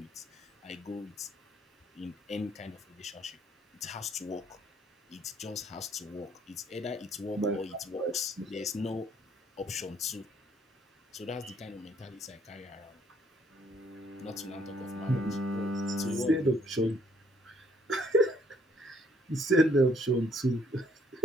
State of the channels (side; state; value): both; normal; correlation 0.65